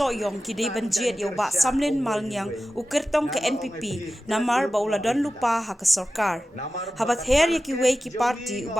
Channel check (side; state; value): both; normal; correlation 0.94